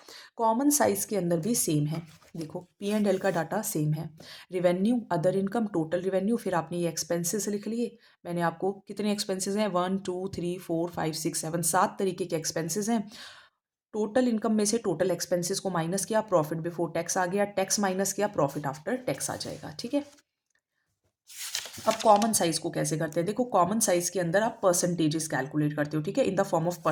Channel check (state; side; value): identical; both; correlation 1.00